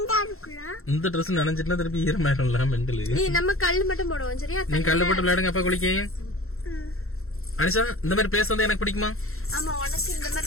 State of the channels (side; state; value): right; late; 0.62 ms